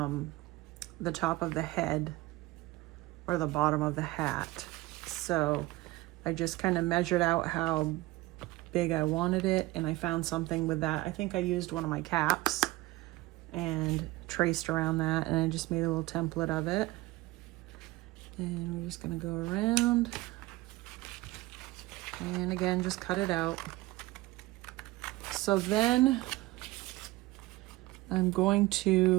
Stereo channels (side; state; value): left; quieter; 19.5 dB